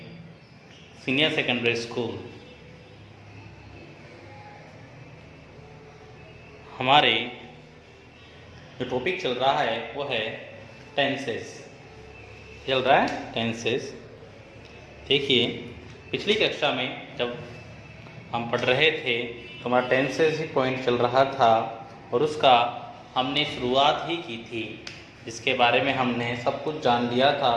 Senior Secondary School. हमारे जो टॉपिक चल रहा है वो है टेंसेस। चल रहा है टेंसेस। देखिए, पिछली कक्षा में जब हम पढ़ रहे थे तो हमारा टेंसेस ही पॉइंट चल रहा था और उसका हमने शुरुआत ही की थी, जिसके बारे में हमने सब कुछ जान लिया था।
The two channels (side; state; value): both; identical; correlation 1.00